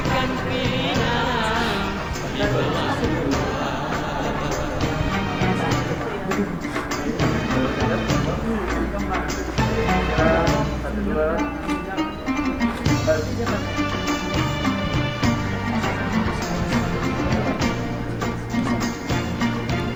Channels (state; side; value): identical; both; correlation 1.00